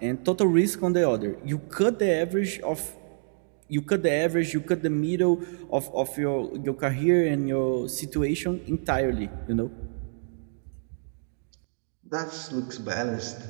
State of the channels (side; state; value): left; silent; digital silence